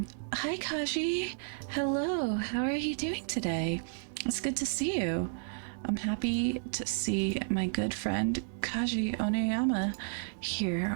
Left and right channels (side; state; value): left; silent; digital silence